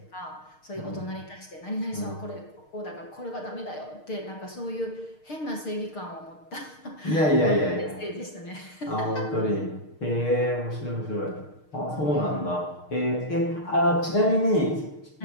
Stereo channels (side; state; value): right; late; 6.5 ms